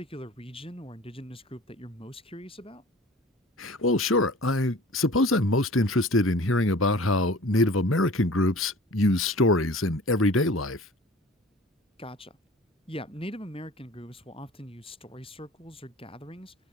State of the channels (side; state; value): both; normal; correlation 0.43